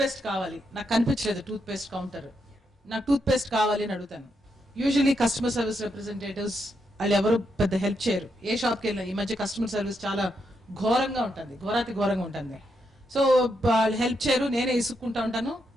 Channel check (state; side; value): normal; both; correlation 0.81